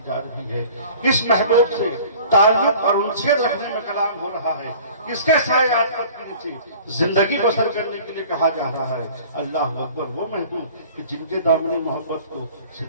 جا رہی ہے، کس محبوب سے تعلق اور انسیت رکھنے میں کلام ہو رہا ہے. کس کے سائے عاطفت کے نیچے زندگی بسر کرنے کے لیے کہا جا رہا ہے. اللہ اکبر. وہ محبوب کہ جن کے دامن محبت کو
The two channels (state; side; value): inverted; both; correlation -0.47